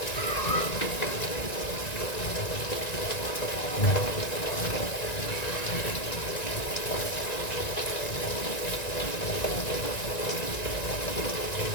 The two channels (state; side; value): late; right; 1.9 ms